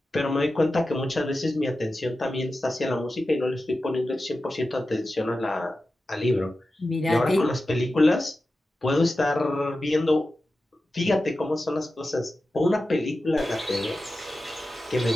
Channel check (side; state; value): both; normal; correlation 0.93